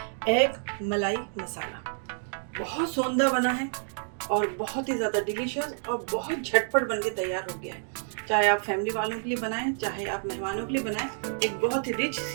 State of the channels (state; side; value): silent; left; digital silence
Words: एग मलाई मसाला। बहुत सोंधा बना है और बहुत ही ज़्यादा डिलीशियस और बहुत झटपट बन के तैयार हो गया है। चाहे आप फैमिली वालों के लिए बनाएं, चाहे आप मेहमानों के लिए बनाएं, एक बहुत ही रिच